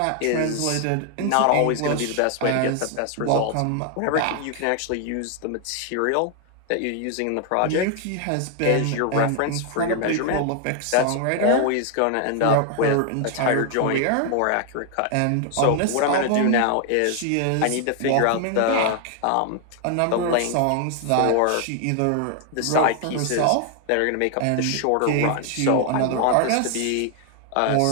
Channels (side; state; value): both; different; correlation 0.00